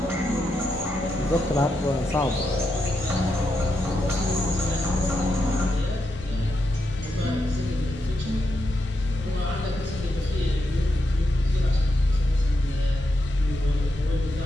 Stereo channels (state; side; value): normal; both; correlation 0.84